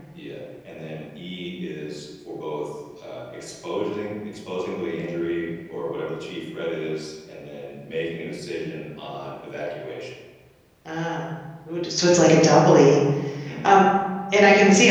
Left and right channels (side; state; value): both; identical; correlation 1.00